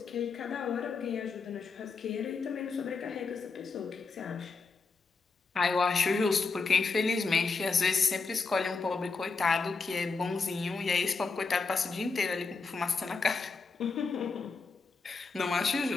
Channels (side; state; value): right; quieter; 4.5 dB